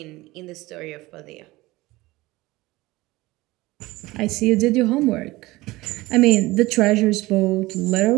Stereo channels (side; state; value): left; quieter; 19.9 dB